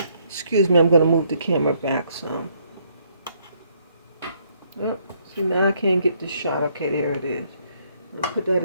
Excuse me, I'm going to move the camera back some. Yep. See, now I can't get this shot. Okay, there it is. I'm going to put that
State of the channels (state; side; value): inverted; both; correlation -0.69